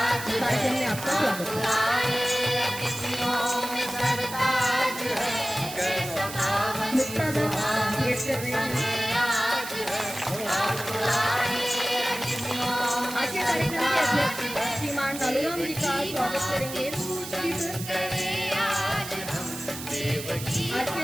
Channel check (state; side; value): noise; right; hiss, 10 dB below the sound